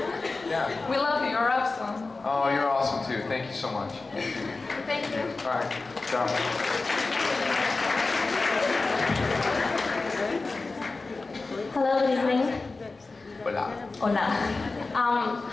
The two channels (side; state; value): right; quieter; 3.7 dB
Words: Yeah. We love you. You're awesome. Oh, you're awesome too. Thank you so much. Thank you. All right. Ciao. Hello, good evening. Hola. Hola.